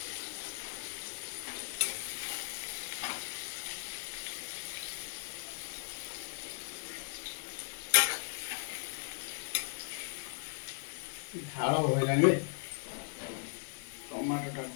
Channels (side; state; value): right; silent; digital silence